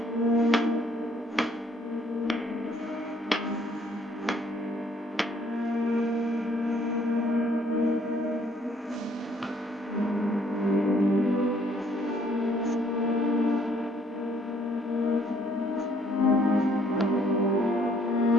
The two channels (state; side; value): normal; both; correlation 0.64